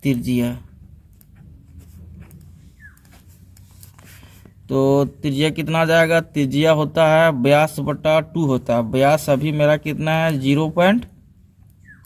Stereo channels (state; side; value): identical; both; correlation 1.00